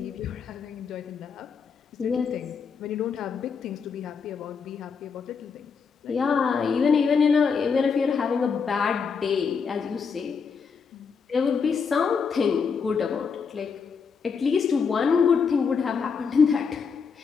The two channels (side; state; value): right; quieter; 5.8 dB